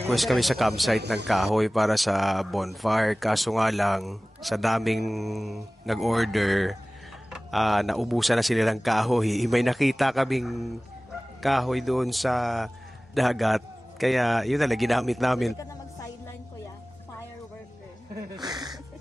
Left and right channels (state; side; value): normal; both; correlation 0.98